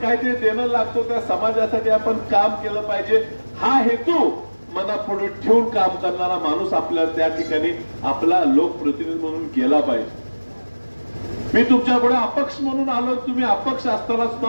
देणं लागतो, त्या समाजासाठी आपण काम केलं पाहिजे हा हेतू मनापुढे ठेवून काम करणारा माणूस आपल्या त्या ठिकाणी आपला लोकप्रतिनिधी म्हणून गेला पाहिजे. मी तुमच्या पुढे अपक्ष म्हणून आलो. तुम्ही अपक्ष असताना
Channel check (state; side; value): inverted; both; correlation -1.00